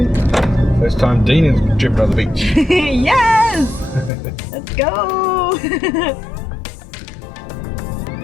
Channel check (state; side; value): drops out; right; at 4.1 s